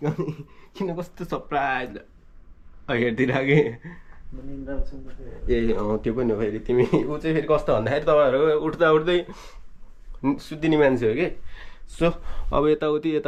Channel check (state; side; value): identical; both; correlation 1.00